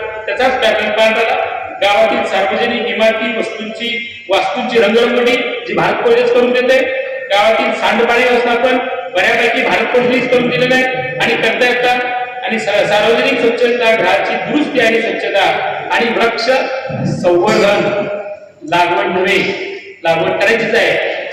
पॅटर्न पाळला. गावातील सार्वजनिक इमारती वास्तूंची रंगरंगोटी जी भारत पोलीस करून देते. गावातील सांडपाणी व्यवस्थापन बऱ्यापैकी भारत पोलीस करून दिलेलं आहे आणि करता येतात. आणि सार्वजनिक स्वच्छता, घराची दुरुस्ती आणि स्वच्छता आणि वृक्ष संवर्धन, लागवड नव्हे, लागवड करायचीच आहे,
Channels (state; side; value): identical; both; correlation 1.00